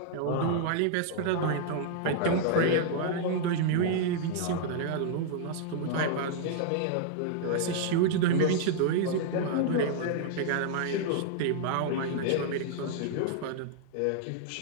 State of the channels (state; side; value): different; both; correlation -0.01